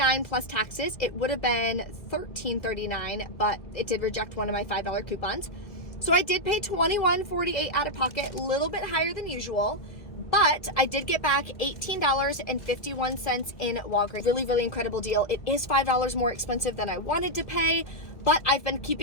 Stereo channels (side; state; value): right; late; 1.8 ms